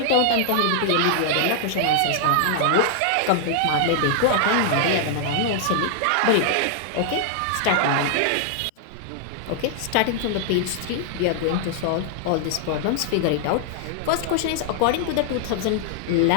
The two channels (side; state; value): both; different; correlation -0.01